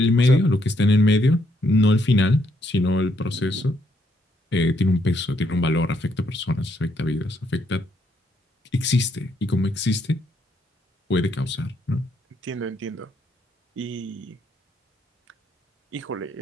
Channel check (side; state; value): both; normal; correlation 0.73